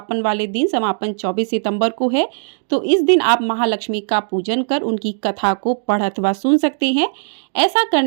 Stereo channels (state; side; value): silent; left; 67 dB below the other